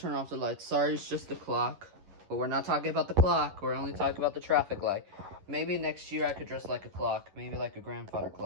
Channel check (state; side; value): late; left; 10 ms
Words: turn off the lights. Sorry, it's just the clock. But we're not talking about the clock. We're only talking about the traffic light. Maybe next year I could dress like a clock. Maybe like a grandfather